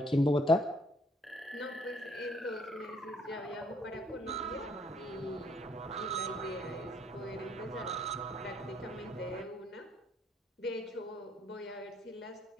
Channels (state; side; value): normal; both; correlation 0.67